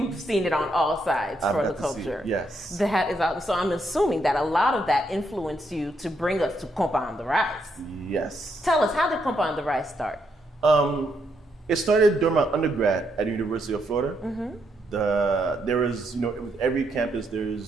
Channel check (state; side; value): normal; both; correlation 0.77